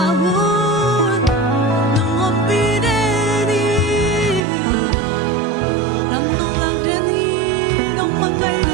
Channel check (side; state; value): left; drops out; at 4.4 s